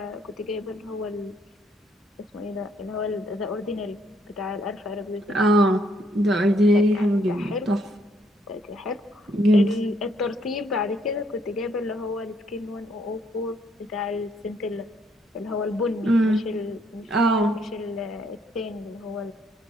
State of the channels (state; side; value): normal; both; correlation 0.70